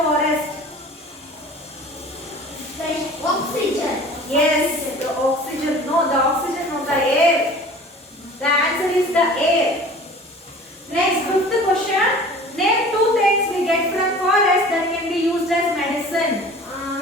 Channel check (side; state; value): both; normal; correlation 0.43